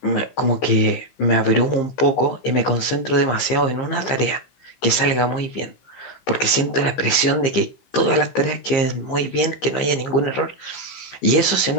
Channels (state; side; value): late; right; 15 ms